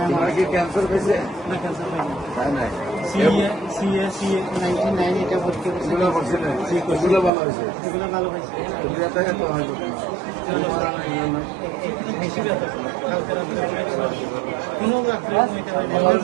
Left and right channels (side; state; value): left; drops out; at 7.3 s